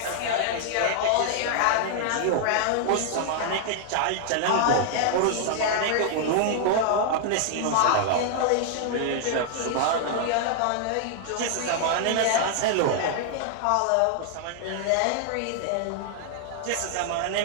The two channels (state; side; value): different; both; correlation 0.00